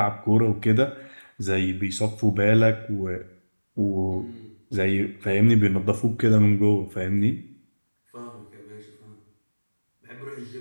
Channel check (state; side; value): inverted; both; correlation -1.00